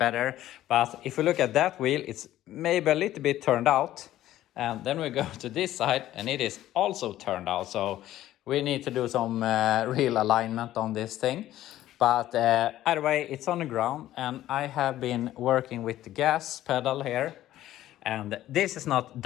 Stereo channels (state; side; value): quieter; right; 13.7 dB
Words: But if we look at that wheel, it's maybe a little bit turned out. And then we go to this side, and it is also turned out. So we need to do some real alignment on this thing. But either way, it's on the ground, and I have been working with the gas pedal here. And this is not